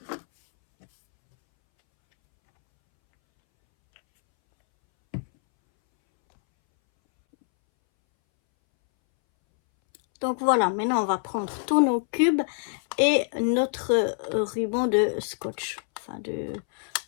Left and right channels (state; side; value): silent; right; 61 dB below the other